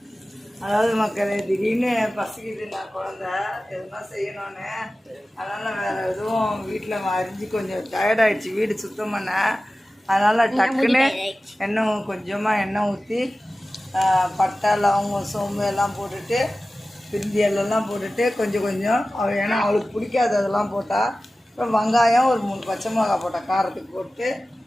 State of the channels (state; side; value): normal; both; correlation 0.96